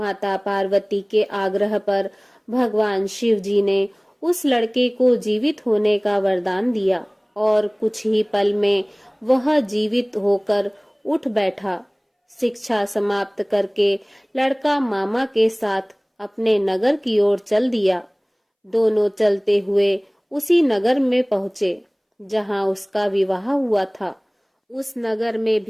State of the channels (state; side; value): identical; both; correlation 1.00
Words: पार्वती के आग्रह पर भगवान शिव जी ने उस लड़के को जीवित होने का वरदान दिया और कुछ ही पल में वह जीवित होकर उठ बैठा। शिक्षा समाप्त करके लड़का मामा के साथ अपने नगर की ओर चल दिया। दोनों चलते हुए उसी नगर में पहुंचे जहां उसका विवाह हुआ था। उस नगर में